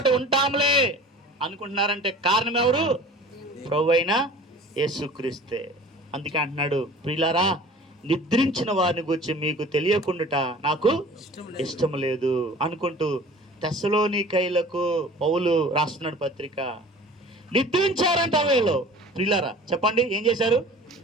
ఉంటాములే అనుకుంటున్నారంటే కారణం ఎవరు? ప్రభువైన యేసుక్రీస్తే. అందుకే అంటున్నాడు, ప్రియులారా, నిద్రించిన వారిని గురించి మీకు తెలియకుండా నాకు ఇష్టం లేదు అనుకుంటూ తెస్సలోనికైలకు పౌలు రాస్తున్నాడు పత్రిక. నిద్రించారంట వీళ్ళు. ప్రియులారా చెప్పండి, ఏం చేశారు?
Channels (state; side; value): normal; both; correlation 0.43